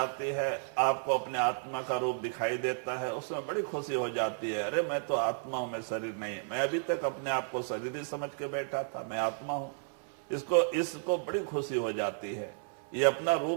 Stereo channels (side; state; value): left; silent; 56 dB below the other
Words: है, आपको अपने आत्मा का रूप दिखाई देता है, उसमें बड़ी खुशी हो जाती है। अरे मैं तो आत्मा हूं, मैं शरीर नहीं। मैं अभी तक अपने आप को शरीर ही समझ के बैठा था, मैं आत्मा हूं। इसको बड़ी खुशी हो जाती है। ये अपना